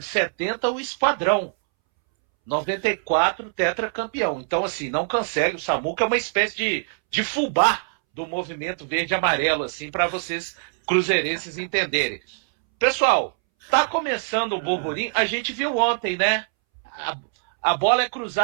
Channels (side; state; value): left; silent; 63 dB below the other